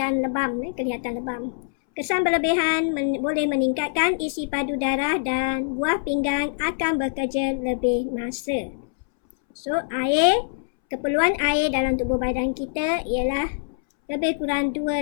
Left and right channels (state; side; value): silent; right; 63 dB below the other